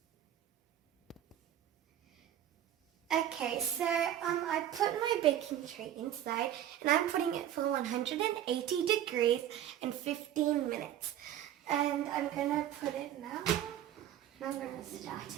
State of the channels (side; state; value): left; quieter; 11.3 dB